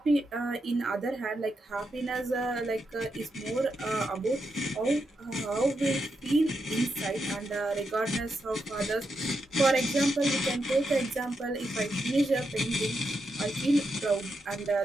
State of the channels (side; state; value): both; normal; correlation 0.84